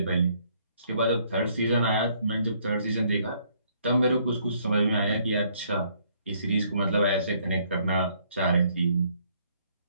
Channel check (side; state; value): both; inverted; correlation -0.66